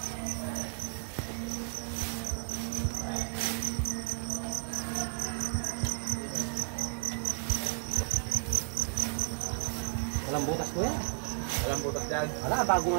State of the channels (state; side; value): silent; left; 56 dB below the other